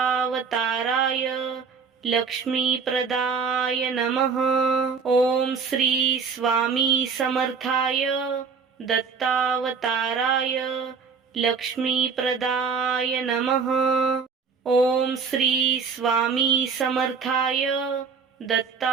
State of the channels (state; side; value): quieter; left; 5.6 dB